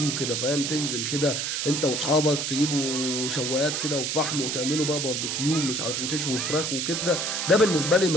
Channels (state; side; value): noise; right; hiss, 1 dB below the sound